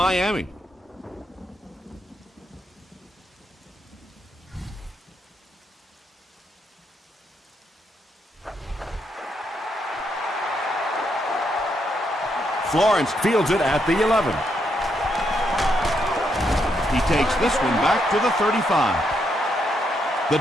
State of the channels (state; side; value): normal; both; correlation 0.78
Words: Florence fields it at the 11. He takes this one back to the 35. The